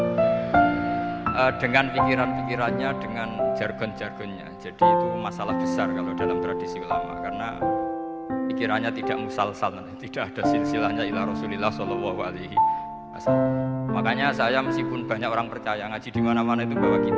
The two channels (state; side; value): identical; both; correlation 1.00